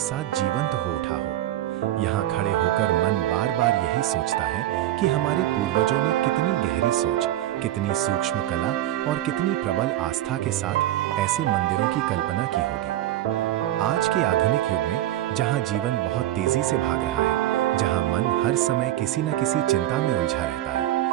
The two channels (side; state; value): left; quieter; 13.8 dB